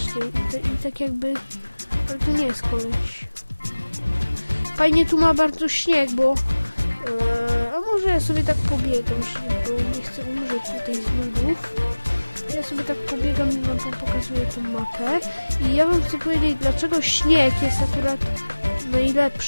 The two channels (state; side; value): inverted; both; correlation -1.00